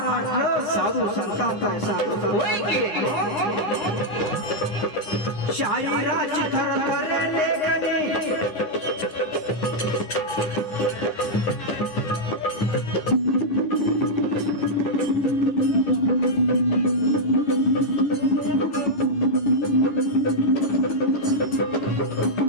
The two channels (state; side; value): late; right; 9.7 ms